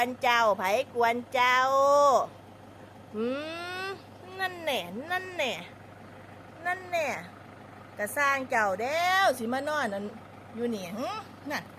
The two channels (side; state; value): both; identical; correlation 1.00